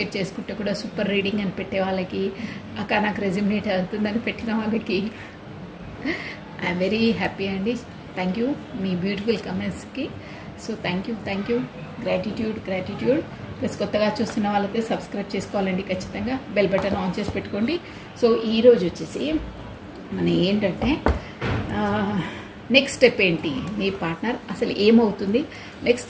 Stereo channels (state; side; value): identical; both; correlation 1.00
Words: చేసుకుంటే కూడా సూపర్ రీడింగ్ అని పెట్టే వాళ్ళకి, అక్క నాకు రెజ్యూమినేట్ అవుతుందని పెట్టిన వాళ్ళకి ఐఎమ్ వెరీ హ్యాపీ అండి. థ్యాంక్ యూ మీ బ్యూటిఫుల్ కామెంట్స్కి. So thank you gratitude. Plus కొత్తగా చూస్తున్న వాళ్ళైతే సబ్స్క్రైబ్ చేసుకోవాలండి ఖచ్చితంగా. బెల్ బటన్ ఆన్ చేసి పెట్టుకోండి. సో ఈరోజు వచ్చేసి మన ఏంటంటే నెక్స్ట్ స్టెప్ ఏంటి, మీ పార్ట్నర్ అసలు ఏమవుతుంది, నెక్స్ట్